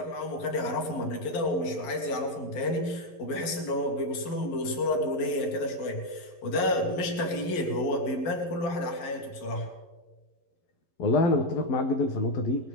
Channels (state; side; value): late; right; 11 ms